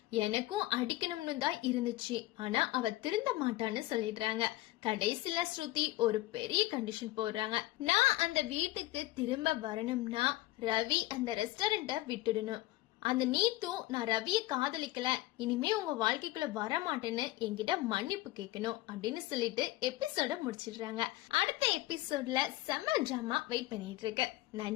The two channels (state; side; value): quieter; right; 17.7 dB